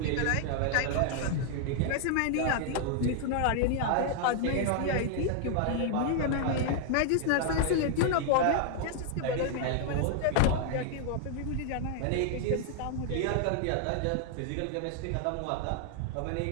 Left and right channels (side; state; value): both; different; correlation 0.00